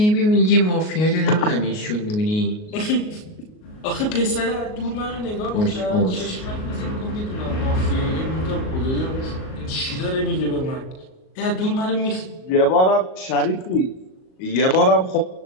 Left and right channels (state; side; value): late; right; 38 ms